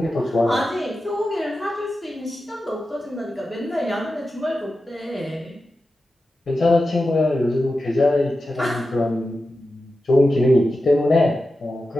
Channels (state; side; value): normal; both; correlation 0.92